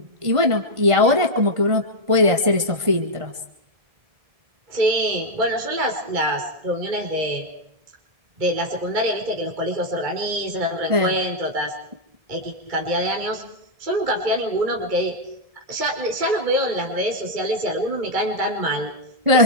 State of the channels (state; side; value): late; left; 1.5 ms